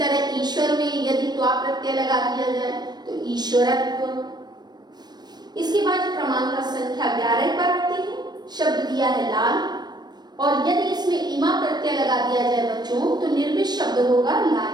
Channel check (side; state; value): left; late; 0.20 ms